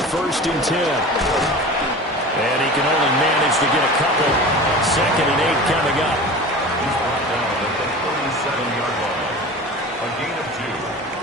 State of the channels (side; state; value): both; normal; correlation 0.35